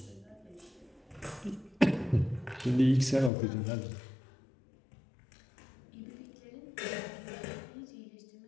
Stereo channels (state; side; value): drops out; right; at 3.3 s